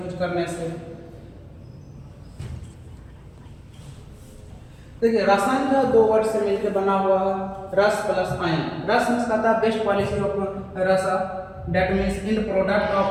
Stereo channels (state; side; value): identical; both; correlation 1.00